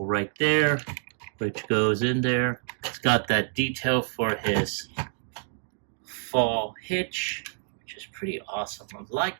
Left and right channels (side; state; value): left; silent; digital silence